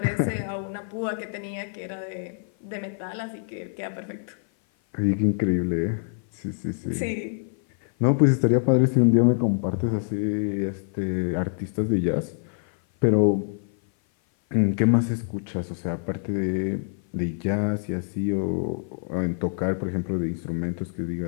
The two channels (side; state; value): right; silent; 56 dB below the other